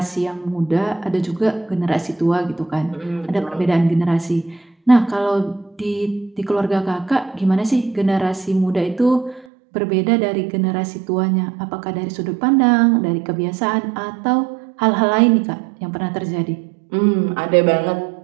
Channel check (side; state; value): left; drops out; at 9.5 s